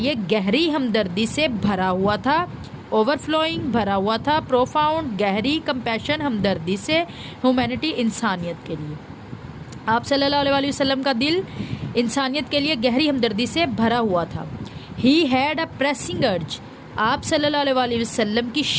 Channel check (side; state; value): both; identical; correlation 1.00